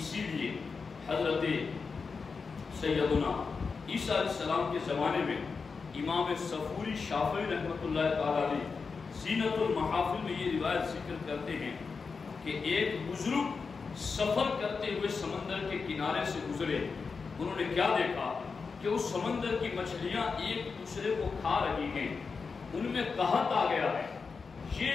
لیے حضرت سیدنا عیسیٰ علیہ السلام کے زمانے میں امام صفوری شافعی رحمۃ اللہ تعالی علیہ زینت المحافل میں یہ روایت ذکر کرتے ہیں کہ ایک بزرگ سفر کرتے ہوئے سمندر کے کنارے سے گزرے، انہوں نے کیا دیکھا کہ اس سمندر کی مچھلیاں ایک دوسرے کو کھا رہی ہیں، ان میں قحط آ گیا ہے۔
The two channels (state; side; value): quieter; right; 5.0 dB